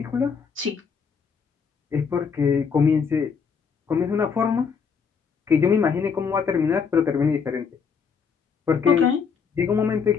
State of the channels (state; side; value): quieter; right; 6.1 dB